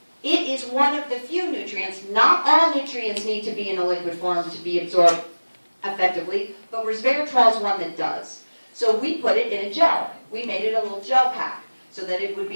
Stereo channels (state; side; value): inverted; both; correlation -1.00